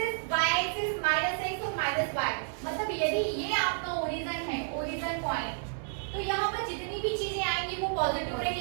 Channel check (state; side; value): silent; left; 57 dB below the other